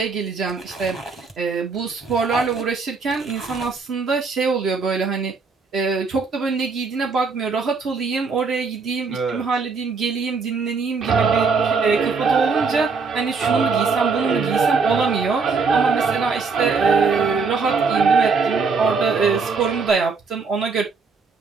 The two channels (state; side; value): quieter; left; 4.8 dB